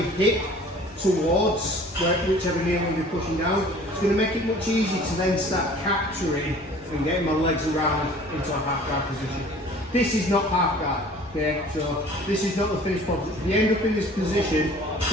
towards whichever knee I'm going to be pushing down. It's going to make it much easier to then start capturing and getting my legs around into a half guard position. This is not half guard, okay? So this is not the finished product. If you end up in this position, it's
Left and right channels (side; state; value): both; normal; correlation 0.49